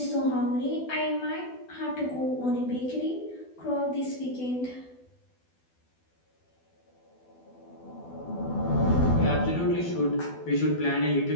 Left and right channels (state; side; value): late; right; 12 ms